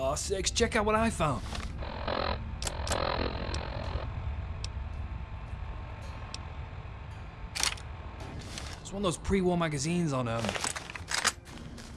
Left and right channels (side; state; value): both; identical; correlation 1.00